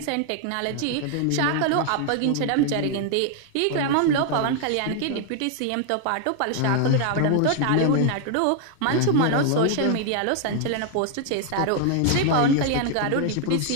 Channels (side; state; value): both; different; correlation 0.00